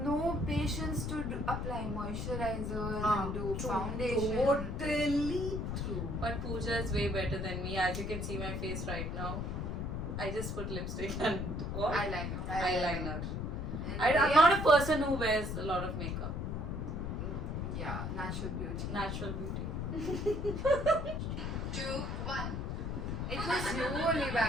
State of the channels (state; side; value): noise; left; rumble, 3 dB below the sound